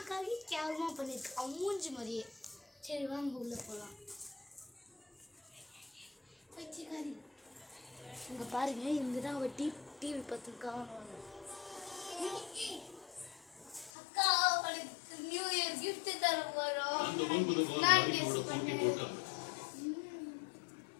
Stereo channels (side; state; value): right; drops out; at 13.9 s